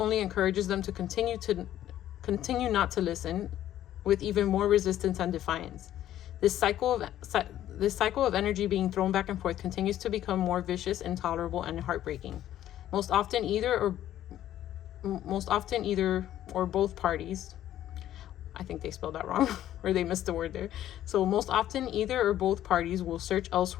encourages them to continue not to listen, with even more resistance and defiance. This cycle of energy being thrown back and forth continues to become more vicious, intolerable, and heartbreaking. Most often either or both parties, I think they spelled that wrong, or they missed the word there. So most often either or both parties will search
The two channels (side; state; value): right; quieter; 12.3 dB